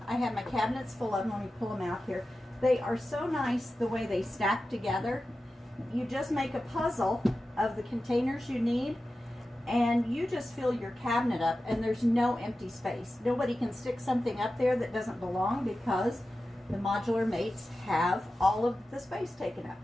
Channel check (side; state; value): both; normal; correlation 0.93